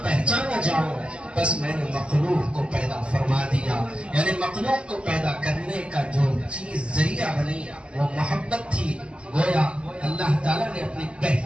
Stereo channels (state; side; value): late; left; 0.055 ms